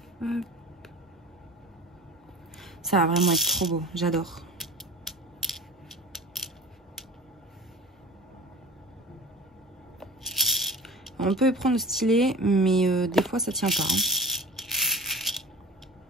Hop. Ça va vraiment être trop beau, j'adore. On peut prendre le stylet, mais des fois ça tient pas. Hein.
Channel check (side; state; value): both; normal; correlation 0.38